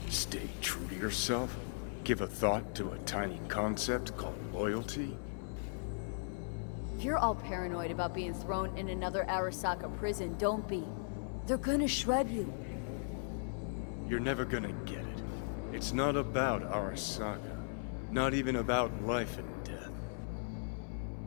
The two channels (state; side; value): silent; right; 53 dB below the other